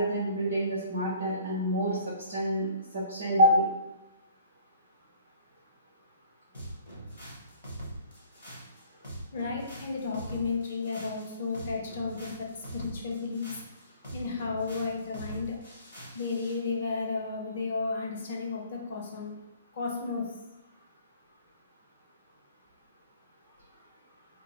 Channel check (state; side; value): inverted; both; correlation -0.53